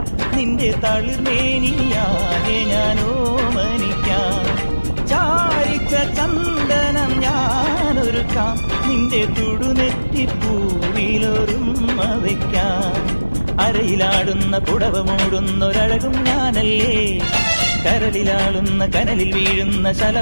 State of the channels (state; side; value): inverted; both; correlation -1.00